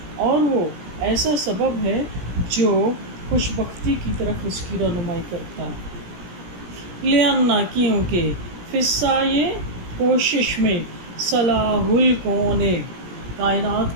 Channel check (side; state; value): left; late; 17 ms